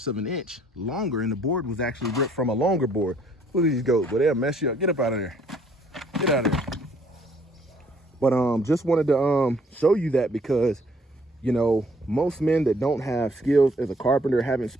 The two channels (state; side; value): normal; both; correlation 0.62